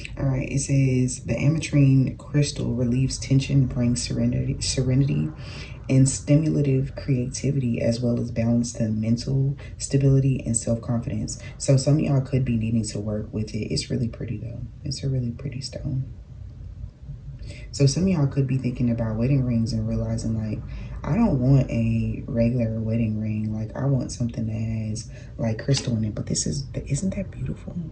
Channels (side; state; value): both; identical; correlation 1.00